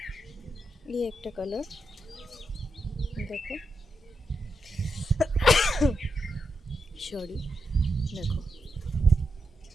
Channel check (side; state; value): both; normal; correlation 0.85